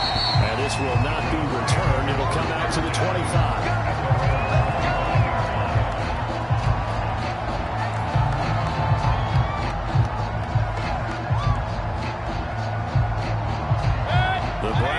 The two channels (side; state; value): both; identical; correlation 1.00